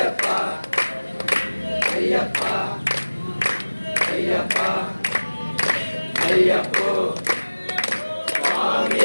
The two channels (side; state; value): both; inverted; correlation -1.00